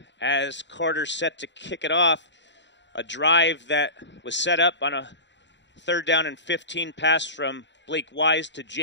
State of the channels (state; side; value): late; right; 0.52 ms